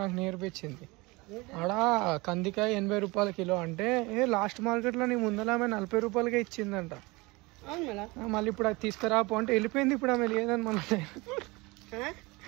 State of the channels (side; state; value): left; quieter; 24.2 dB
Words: నాకు నేర్పించింది. ఆడ కందికాయ 80 రూపాయల కిలో అంటే లాస్ట్ మార్కెట్లో నీ ముందర ఆమె 40 రూపాయలకే ఇచ్చిందంట. మళ్ళీ ఇప్పుడు అది తీసుకురాపో అంటే వెళ్ళిపోయింది. ఇప్పుడు ఆమె లేదని మన